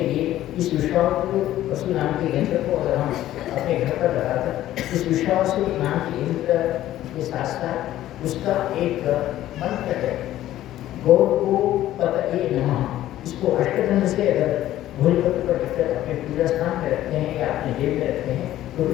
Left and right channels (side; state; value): right; quieter; 13.7 dB